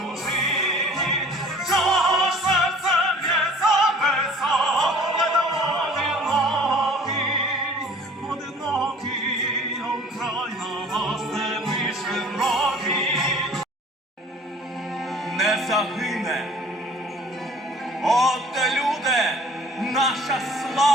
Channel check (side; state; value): both; normal; correlation 0.49